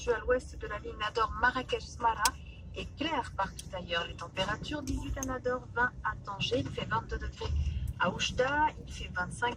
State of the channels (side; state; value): both; identical; correlation 1.00